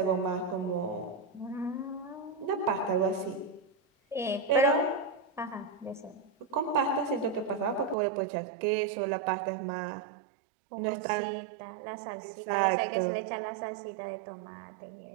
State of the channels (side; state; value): left; drops out; at 8.0 s